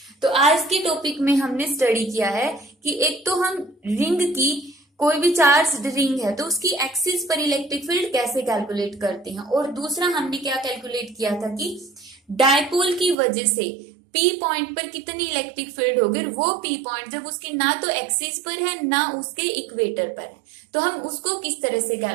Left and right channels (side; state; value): left; drops out; at 13.2 s